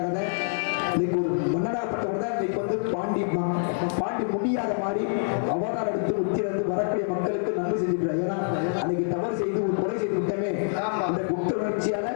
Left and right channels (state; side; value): silent; right; 61 dB below the other